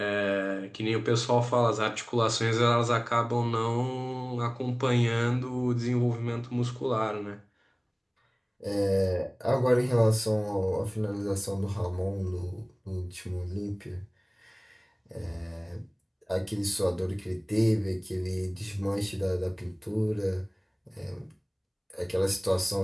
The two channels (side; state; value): both; identical; correlation 1.00